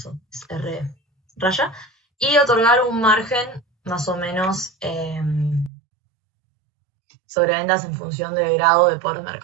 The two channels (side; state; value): left; drops out; at 5.7 s